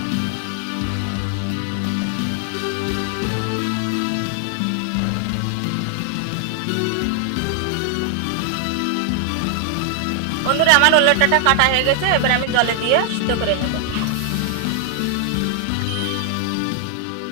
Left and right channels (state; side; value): different; both; correlation 0.00